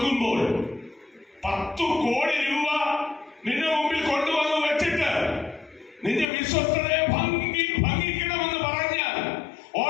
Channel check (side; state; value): right; drops out; at 6.2 s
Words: 10 കോടി രൂപ നിന്റെ മുമ്പിൽ കൊണ്ടുവന്ന് വെച്ചിട്ട് നിന്റെ വിശ്വസ്തതയെ ഭംഗിക്കണമെന്ന് പറഞ്ഞാൽ